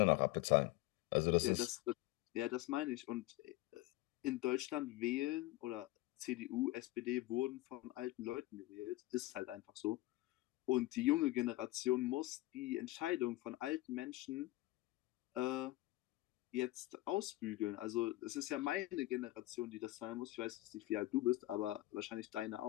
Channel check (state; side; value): quieter; right; 17.9 dB